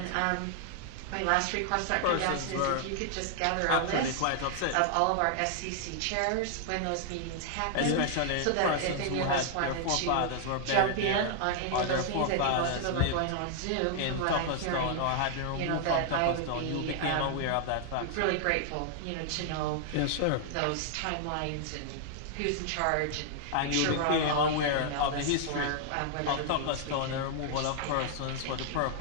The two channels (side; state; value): both; different; correlation -0.01